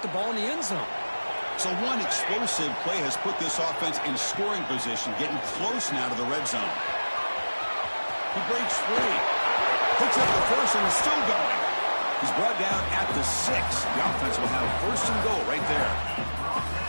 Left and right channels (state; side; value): inverted; both; correlation -1.00